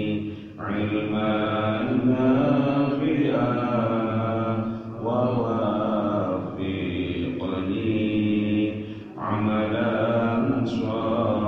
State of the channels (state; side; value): identical; both; correlation 1.00